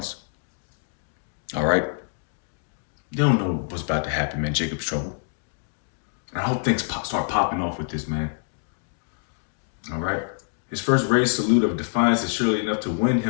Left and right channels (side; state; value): right; silent; digital silence